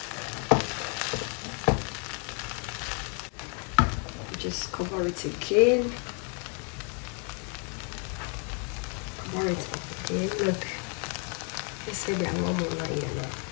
Just cover it again. Cover it again. Look, they said they are normal now.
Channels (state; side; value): quieter; right; 38.8 dB